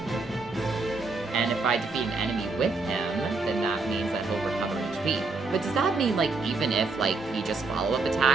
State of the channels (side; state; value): left; quieter; 3.9 dB